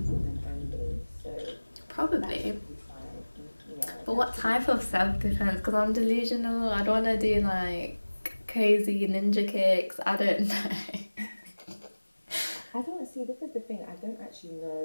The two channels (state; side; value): inverted; both; correlation -1.00